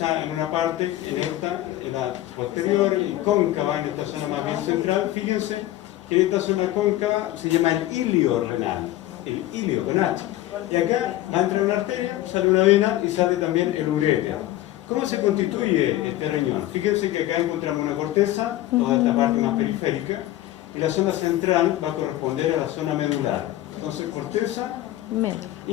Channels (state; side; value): quieter; right; 14.9 dB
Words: en una parte, en la posterior, y cóncava en esta zona más bien central. Fíjense que esta zona cóncava se llama el ilio renal, el ilio con H. Y acá va a entrar una arteria, sale una vena y sale también el uréter. ¿Cómo se constituye este riñón? Fíjense que acá encontramos una corteza, toda esta parte más periférica, y la zona central va a corresponder a la zona medular. Entonces, corteza